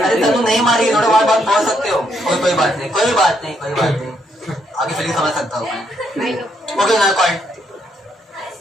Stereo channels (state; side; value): normal; both; correlation 0.74